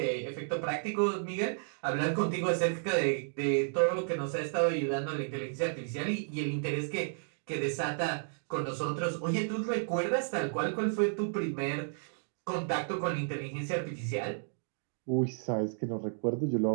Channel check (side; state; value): left; silent; digital silence